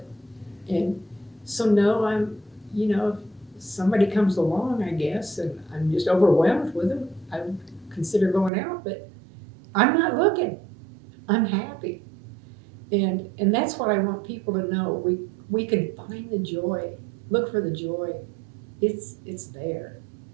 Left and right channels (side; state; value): left; drops out; at 8.5 s